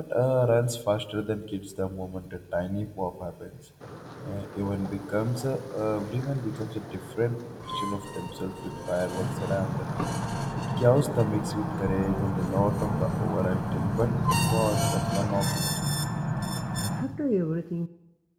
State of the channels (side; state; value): both; identical; correlation 1.00